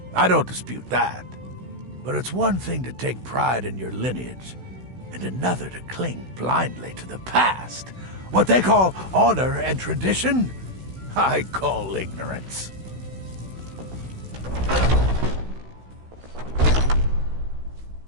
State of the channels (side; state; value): left; late; 16 ms